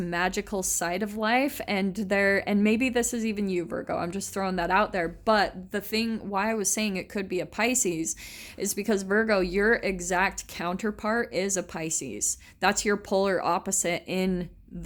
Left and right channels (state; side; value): identical; both; correlation 1.00